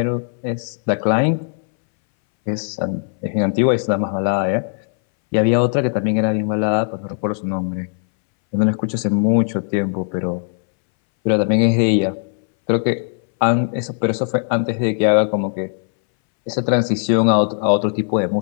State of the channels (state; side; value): silent; right; 63 dB below the other